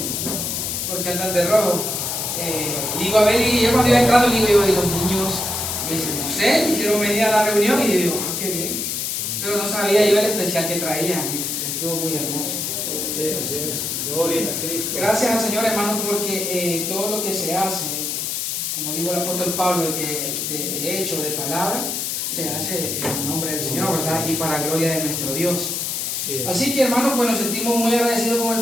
¿Por qué andan de rojo? Digo, a ver, y yo cuando iba entrando, digo, y los niños, me dicen, no sé, hicieron venir a la reunión y digo, qué bien. Pero no sabía yo el especial que traían, y estuvo muy hermoso. Sí, así es. Gloria a Cristo. Gracias al Señor, hermano, porque todo lo que se hace, como dijo el apóstol Pablo, de hecho, de palabra, se hace en el nombre del Señor, ¿verdad? Y para gloria de nuestro Dios. Sí. Así que, hermanos, pues nos sentimos muy agradecidos con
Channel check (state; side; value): noise; left; hiss, 2 dB below the sound